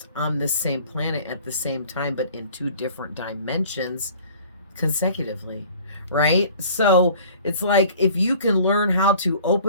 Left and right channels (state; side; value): inverted; both; correlation -0.50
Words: on this same planet at the same time, but in two different dimensions consecutively, right? So it's like, if you can learn how to